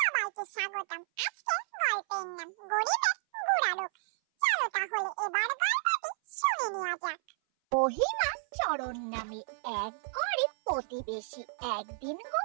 স্বাগতম। আজকে গল্পের নাম গরিবের বুড়া লোক। চলো তাহলে এবার গল্পটি শুনে নেওয়া যাক। মহিমা চরণ নামে এক গরিব প্রতিবেশী একদিন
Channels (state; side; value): silent; left; 56 dB below the other